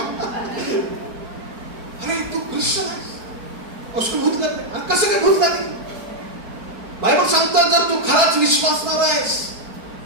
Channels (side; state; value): left; late; 4.5 ms